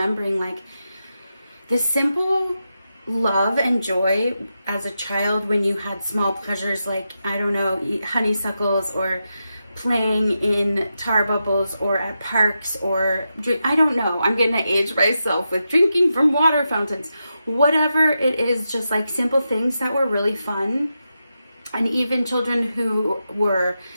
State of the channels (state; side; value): inverted; both; correlation -0.88